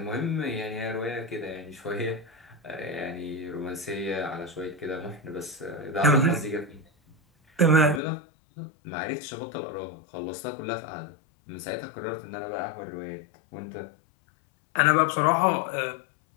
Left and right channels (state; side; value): drops out; right; at 8.0 s